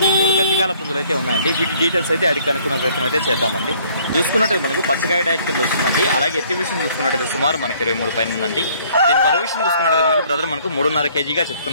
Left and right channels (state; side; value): inverted; both; correlation -0.60